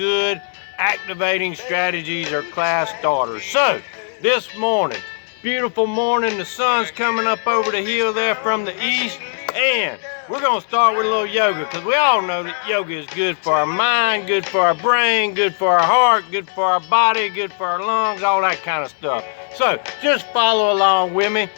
activating strategies or class starters. So, this morning, beautiful morning, the sun's coming up over the hill there from the east, and we're gonna start with a little yoga, because we all know that yoga is good for our mind, good for our brain, good for our heart, good for our body, good for our lungs, all that kind of stuff. So just follow along with me.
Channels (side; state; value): right; silent; digital silence